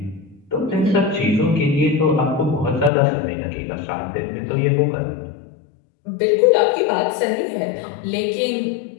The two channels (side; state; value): right; drops out; at 2.9 s